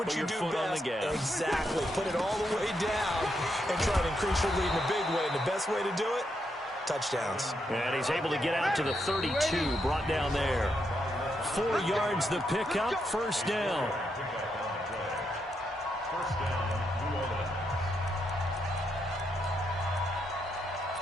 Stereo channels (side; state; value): both; normal; correlation 0.80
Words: what you do best. Exactly. Put it all the way down and try to increase your lead in a big way. And the best way to do it, touchdowns. And he's able to get out to the 32, brought down there. 4 yards the pickup, 1st down.